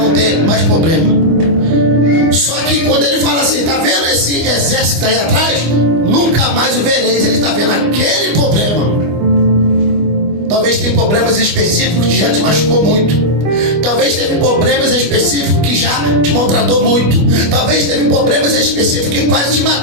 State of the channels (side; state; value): left; late; 25 ms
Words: ter mais problema. Só que quando ele fala assim, tá vendo esse exército aí atrás? Nunca mais o vereis. Ele está vendo aquele problema. Talvez tenha problemas específicos que já te machucou muito. Talvez teve problemas específicos que já te maltratou muito. Talvez teve problemas específicos que quase te